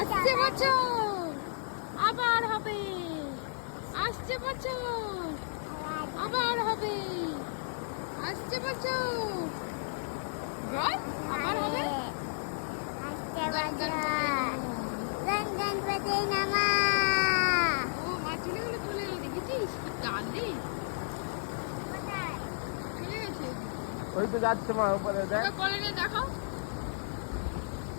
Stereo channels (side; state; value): right; silent; digital silence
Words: বছর আবার হবে, আসছে বছর আবার হবে, আসছে বছর আবার হবে। গণপতি নামা। ও মা চলে গেল, চলে গেল, দেখেছিস কি গান রে, চলে গেছে। ওই তো যাচ্ছে মা উপরে, দেখ কোলে নিয়ে দেখাও,